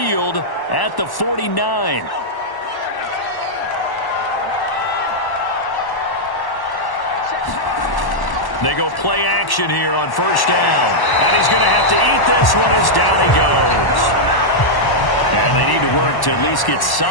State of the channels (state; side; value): late; right; 1.1 ms